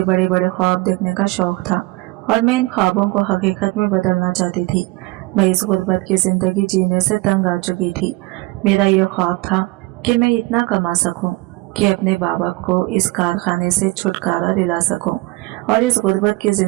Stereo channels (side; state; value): left; quieter; 22.6 dB